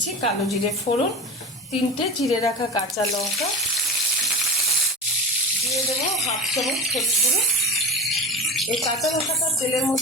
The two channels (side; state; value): both; normal; correlation 0.27